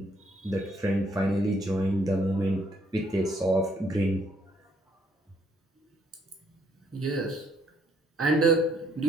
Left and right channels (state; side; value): normal; both; correlation 0.68